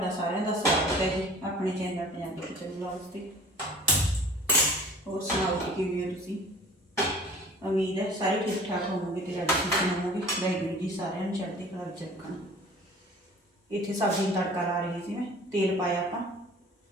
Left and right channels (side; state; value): both; normal; correlation 0.46